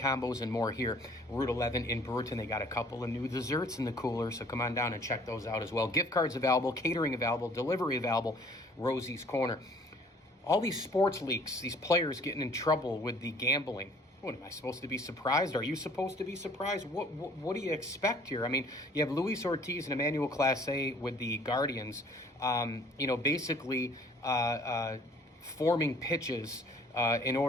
and more here. Route 11 in Brewerton. They got a couple of new desserts in the cooler, so come on down and check those out as well. Gift cards available, catering available, delivery available, Rosie's Corner. All these sports leaks, these players getting in trouble with the gambling. What, am I supposed to be surprised? Are you supposed to be surprised? What do you expect here? I mean, you have Luis Ortiz and Emmanuel Clase with the Guardians, basically forming pitches in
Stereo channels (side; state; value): both; normal; correlation 0.55